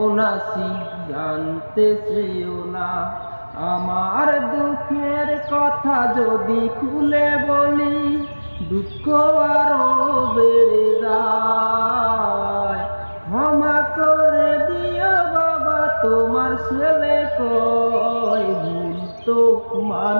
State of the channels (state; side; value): inverted; both; correlation -1.00